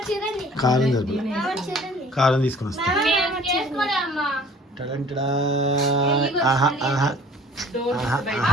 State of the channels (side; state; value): both; normal; correlation 0.50